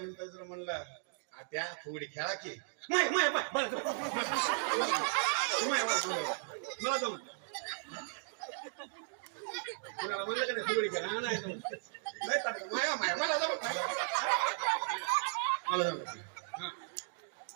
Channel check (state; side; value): silent; left; digital silence